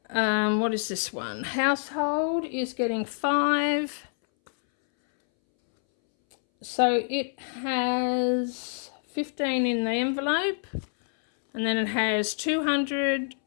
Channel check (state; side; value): silent; right; 60 dB below the other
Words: What is this one? Household is getting 5, so it has 15 in the envelope, and then it has 200,